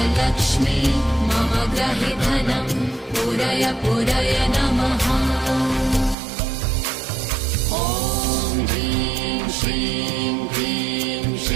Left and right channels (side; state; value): left; drops out; at 6.2 s